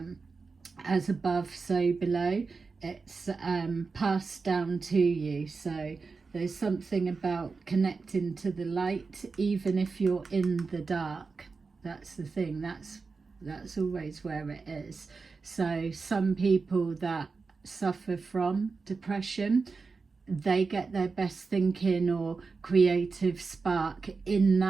as above so below, it's passed down to you. So there's something about connecting to the light, even if you're in the dark. That's the thing. That's always where it is. So some people that suffer from depression, they get their best thinking or creative spark in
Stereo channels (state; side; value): quieter; left; 4.5 dB